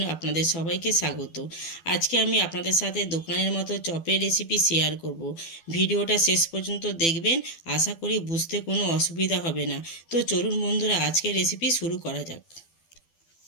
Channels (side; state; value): right; late; 12 ms